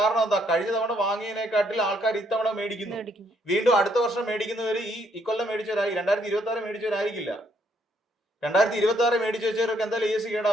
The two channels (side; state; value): both; normal; correlation 0.70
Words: എന്താ? കഴിഞ്ഞ തവണ വാങ്ങിയതിനെക്കാട്ടിൽ ആൾക്കാർ ഇത്തവണ മേടിക്കുന്നു. വീണ്ടും അടുത്ത വർഷം മേടിക്കുന്നവര് ഈ കൊല്ലം മേടിച്ചവരായി 2026 മേടിച്ചവരായിരിക്കില്ല. 2026 മേടിച്ചു വെച്ചവർക്ക് എന്തായാലും AC